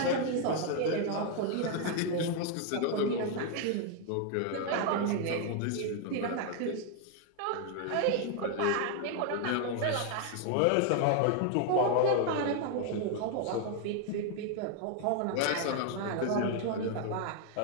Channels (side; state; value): both; different; correlation 0.00